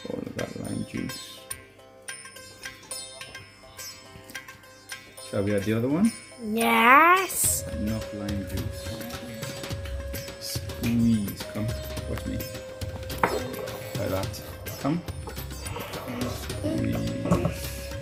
all of that lime juice. Shall we add the other one? Yes. Enough lime juice. Squeeze. Come, watch me. Like that. Come. Squeeze.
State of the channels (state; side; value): identical; both; correlation 1.00